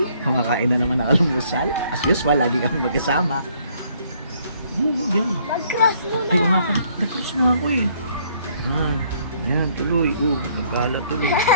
Kumakain na naman ng almusal. As usual, lagi kami magkasama. Yun. Mag-cross mo na. Ay, nga pa. Nag-cross na ako eh. Ayan, tuloy. Nagkalat tuloy.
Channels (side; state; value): both; inverted; correlation -0.65